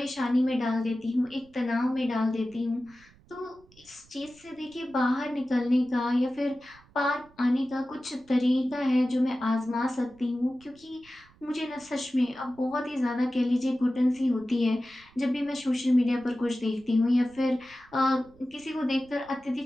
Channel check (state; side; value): noise; right; rumble, 28 dB below the sound